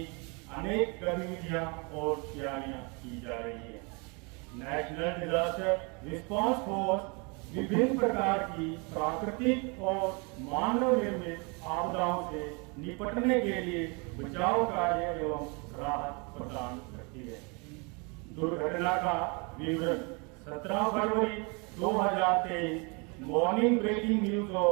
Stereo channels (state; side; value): quieter; left; 31.6 dB